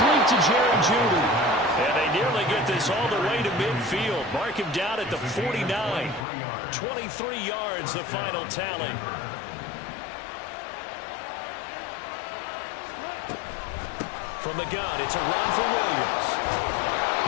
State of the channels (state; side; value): drops out; right; at 6.2 s